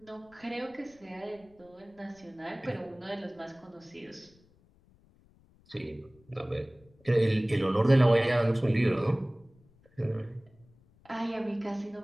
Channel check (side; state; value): left; noise; rumble, 30 dB below the sound